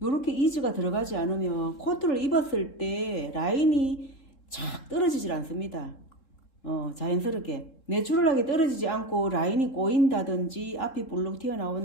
이즈가 들어가지 않으면 코트를 입었을 때 라인이 착 떨어지질 않습니다. 자연스럽게 내추럴하게 떨어지지 않고 라인이 꼬인다든지 앞이 볼록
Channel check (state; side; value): late; right; 3.7 ms